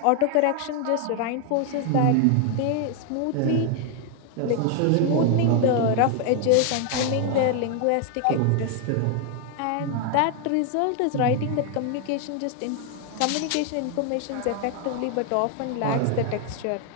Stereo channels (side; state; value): both; different; correlation 0.00